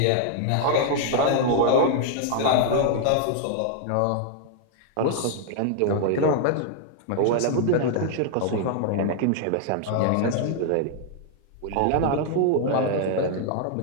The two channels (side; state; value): both; different; correlation 0.00